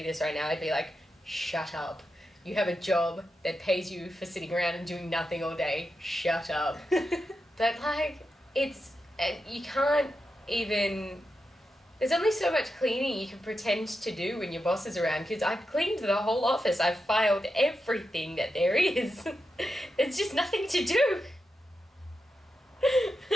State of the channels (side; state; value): both; normal; correlation 0.88